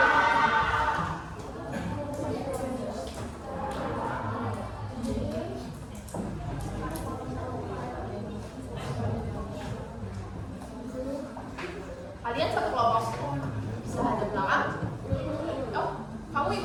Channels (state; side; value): identical; both; correlation 1.00